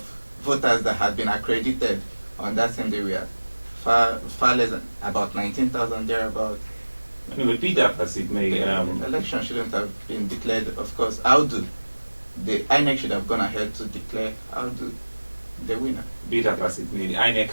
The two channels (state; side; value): inverted; both; correlation -1.00